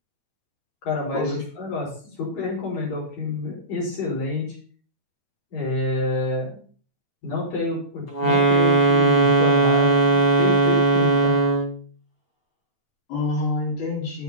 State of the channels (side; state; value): right; late; 9.0 ms